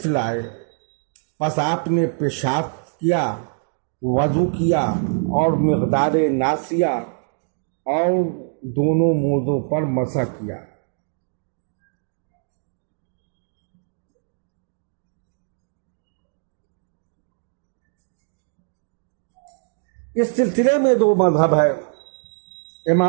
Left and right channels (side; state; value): left; silent; 59 dB below the other